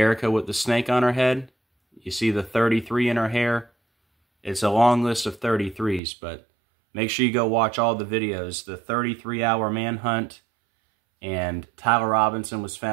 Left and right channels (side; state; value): left; drops out; at 6.0 s